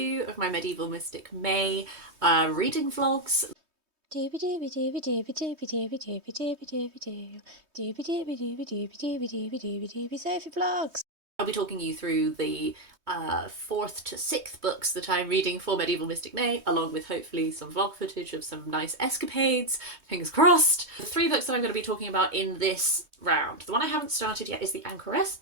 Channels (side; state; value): left; late; 3.2 ms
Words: of my Medieval Mystic May reading vlogs. Dooby dooby dooby dooby dooby dooby dooby dooby dooby doo. Dooby dooby dooby dooby dooby dooby dooby dooby Sophie vlogs. I'll be talking you through the 4th to 6th books that I'm reading for Medieval Mystic May, along with hopefully some vlog footage of some nice escapades, fingers crossed. The 3 books that I'm going to be talking about in this round. The one I haven't started yet is The Anchoress